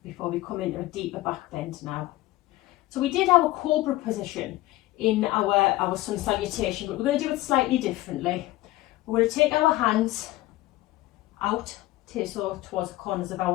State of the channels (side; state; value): right; quieter; 17.9 dB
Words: Before we come into a deeper back bend now. So we did our cobra position in our sun salutation, but we're going to do it slightly differently. We're going to take our hands out, so towards the corners of